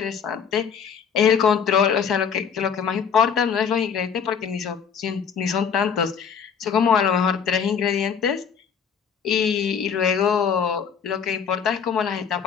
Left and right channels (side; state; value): right; quieter; 6.9 dB